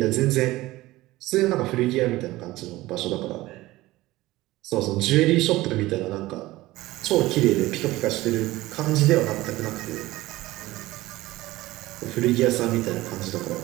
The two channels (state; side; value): quieter; left; 18.1 dB